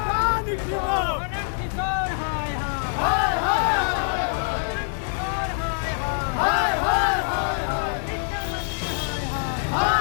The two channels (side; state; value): right; silent; digital silence